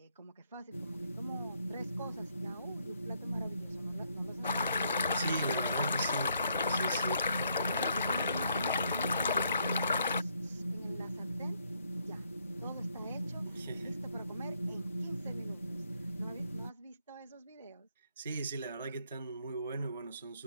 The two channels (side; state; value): both; inverted; correlation -0.73